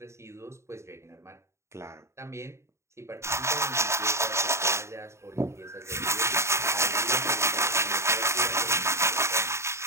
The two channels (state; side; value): late; left; 0.13 ms